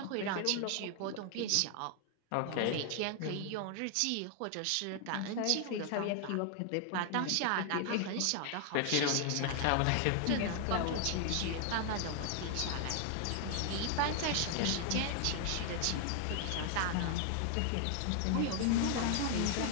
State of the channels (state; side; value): different; both; correlation 0.00